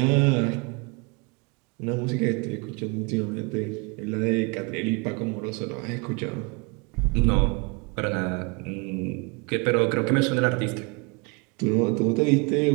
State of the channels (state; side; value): quieter; left; 30.6 dB